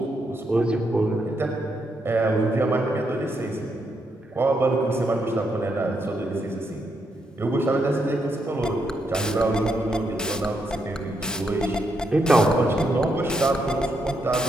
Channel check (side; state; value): both; normal; correlation 0.79